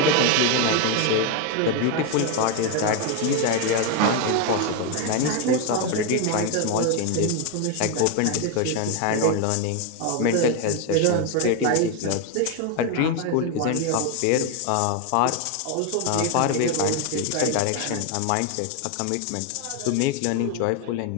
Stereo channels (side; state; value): both; different; correlation 0.01